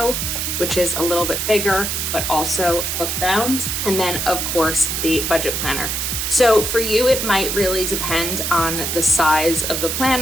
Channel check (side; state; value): right; noise; hiss, 1 dB below the sound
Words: which is a little bit bigger, but also book bound. And then of course the budget planner. So for you, it might really depend on the size of the